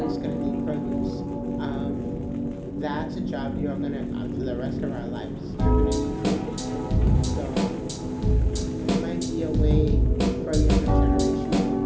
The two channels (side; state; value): both; identical; correlation 1.00